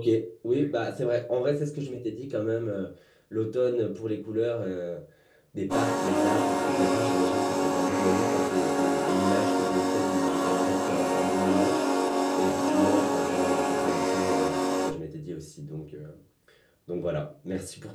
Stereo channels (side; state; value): both; identical; correlation 1.00